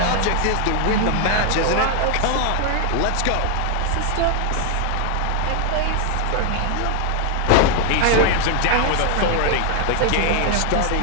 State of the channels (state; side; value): different; both; correlation 0.00